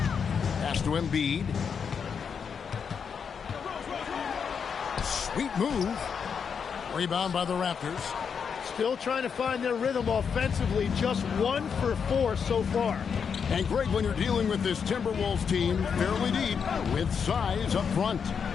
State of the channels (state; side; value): quieter; right; 6.6 dB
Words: Pass to Embiid. Sweet move. Rebound by the Raptors. Still trying to find their rhythm offensively. Just 1 for 4 so far. And Greg, when you're dealing with this Timberwolves team, fairly deep, with size up front.